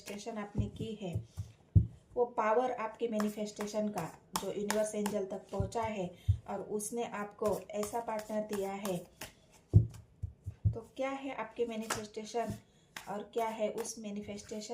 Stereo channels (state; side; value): identical; both; correlation 1.00